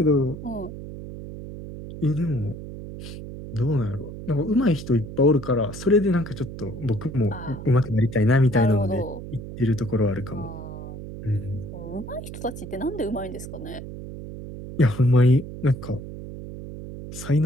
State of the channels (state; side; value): noise; right; hum, 11 dB below the sound